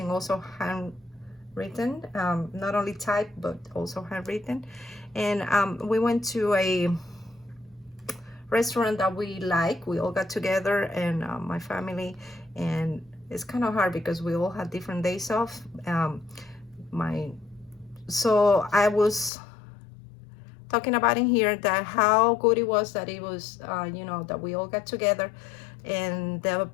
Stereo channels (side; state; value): right; drops out; at 19.3 s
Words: also handwritten, not only typed but also handwritten. And we went to a restaurant that we like. We all got together, and my family, and it's kind of hard because we all had different days off. So I was talking about in here that how good it was that it was, you know, that we all got together, and the